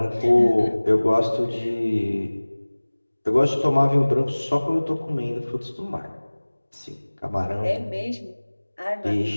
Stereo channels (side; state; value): both; inverted; correlation -1.00